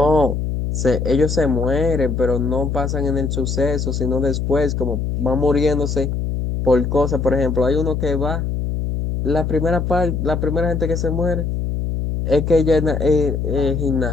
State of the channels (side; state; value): left; noise; hum, 2 dB below the sound